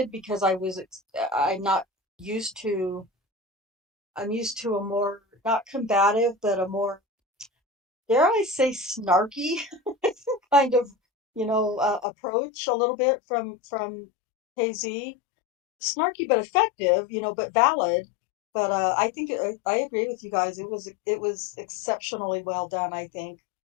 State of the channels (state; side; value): drops out; right; at 12.1 s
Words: because I'm used to a more, not combative, but a more, dare I say, snarky kind of, approach a little bit from KZ. Snarky but effective, but valid. But I think I agree with you guys. It was exceptionally well done, I think.